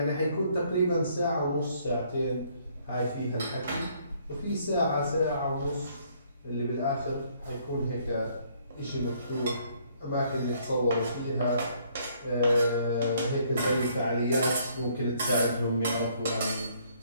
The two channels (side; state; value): both; inverted; correlation -0.65